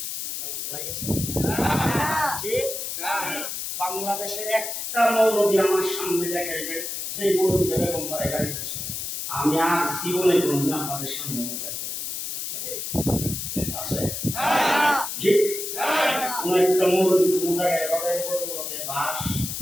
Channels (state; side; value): noise; left; hiss, 5 dB below the sound